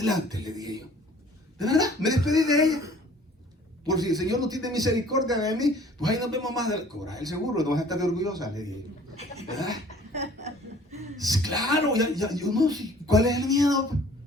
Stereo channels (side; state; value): both; normal; correlation 0.52